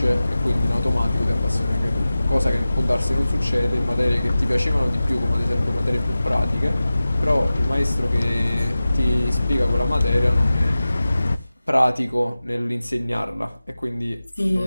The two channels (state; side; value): inverted; both; correlation -0.96